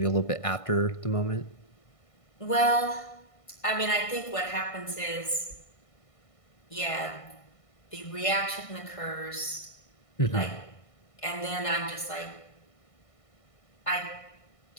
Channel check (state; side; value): late; right; 1.5 ms